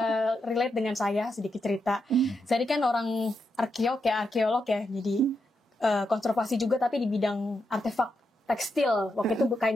relate dengan saya sedikit cerita. Saya kan orang arkeolog ya, jadi konservasi juga tapi di bidang artefak tekstil. Waktu itu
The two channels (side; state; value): both; normal; correlation 0.84